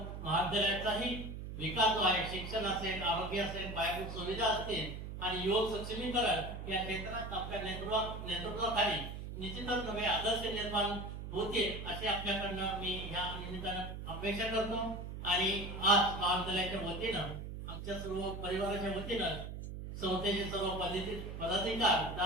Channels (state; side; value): noise; right; hum, 8 dB below the sound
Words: महाविद्यालयाचाही विकास जो आहे, शिक्षण असेल, आरोग्य असेल, पायाभूत सुविधा असतील आणि युवक सक्षमीकरण या क्षेत्रात आपल्या नेतृत्वाखाली निश्चितच नवे आदर्श निर्माण होतील अशी आपल्याकडनं मी ह्या निमित्तानं अपेक्षा करतो. आणि आज महाविद्यालयाच्या वतीनं, आमच्या सर्व परिवाराच्या वतीनं, संस्थेचे सर्व